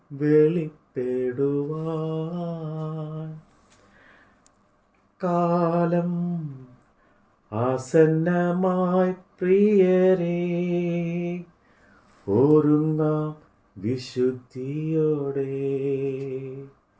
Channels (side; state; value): both; identical; correlation 1.00